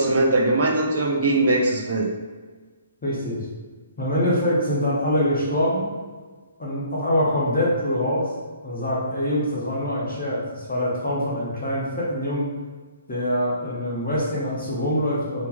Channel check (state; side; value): inverted; both; correlation -0.55